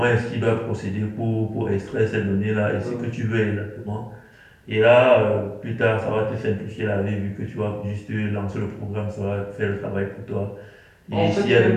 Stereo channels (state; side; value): identical; both; correlation 1.00